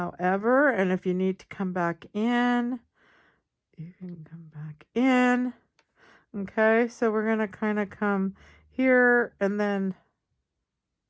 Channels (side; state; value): both; identical; correlation 1.00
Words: and if you need to come back in, you can come back in. Okay, so we're going to kind of come here, and then